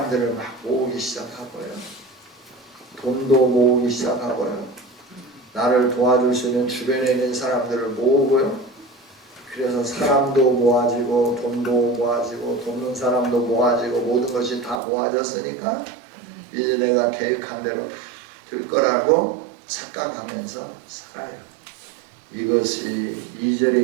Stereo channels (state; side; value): drops out; left; at 14.8 s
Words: 막 모으기 시작하고요. 돈도 모으기 시작하고요. 나를 도와줄 수 있는 주변에 있는 사람들을 모으고요. 그래서 사람도 모아지고 돈도 모아지고 돕는 사람도 모아지고 모든 것이 다 모아졌으니까 이제 내가 계획한 대로 다 될 거라고 착각하면서 살아요. 이것이 2절에